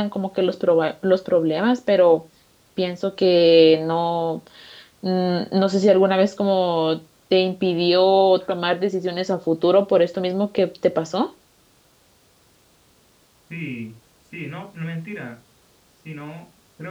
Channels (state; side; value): identical; both; correlation 1.00